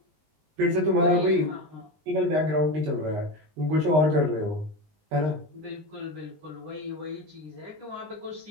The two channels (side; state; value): left; late; 19 ms